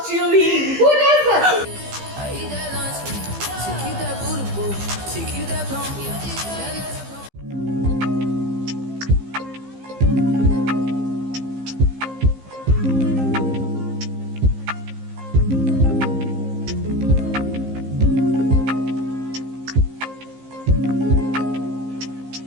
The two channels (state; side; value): late; left; 15 ms